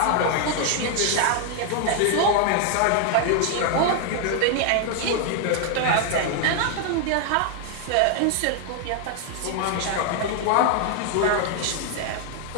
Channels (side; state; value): both; different; correlation 0.00